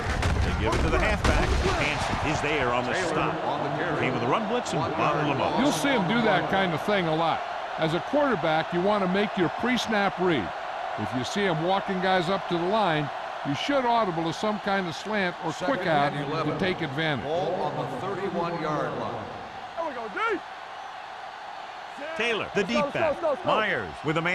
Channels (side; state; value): both; identical; correlation 1.00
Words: give it to the halfback. Hanson is there on the stop. Came with a run blitz and bottled him up. You'll see him do that kind of thing a lot. As a quarterback, you want to make your pre-snap read. If you see him walking guys up to the line, you should audible to some kind of slant or quick out to take advantage. Ball on the 31-yard line. There we go, D. Taylor, the deep back. Myers with a